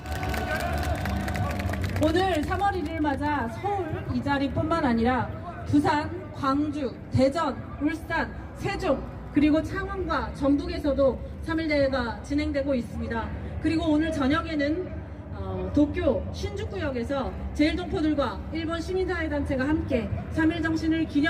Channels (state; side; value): identical; both; correlation 1.00